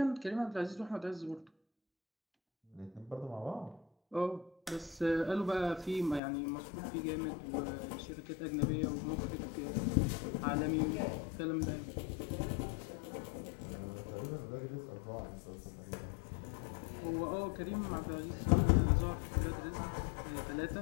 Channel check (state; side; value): drops out; right; at 6.2 s